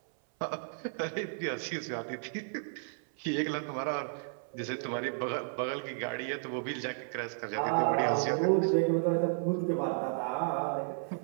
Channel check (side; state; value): left; silent; 56 dB below the other